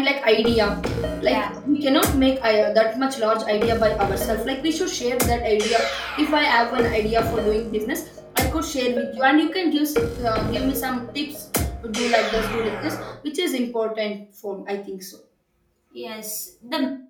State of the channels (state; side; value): identical; both; correlation 1.00